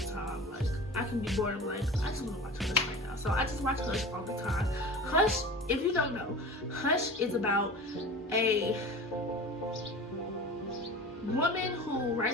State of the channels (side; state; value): both; normal; correlation 0.35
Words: time. Like, I can be bored. I'm like, I just want to watch Hush right now. So I just watch Hush all the time. Hush, if you don't know, Hush is about a woman who